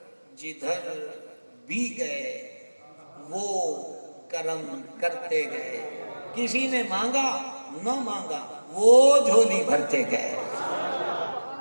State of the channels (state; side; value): inverted; both; correlation -1.00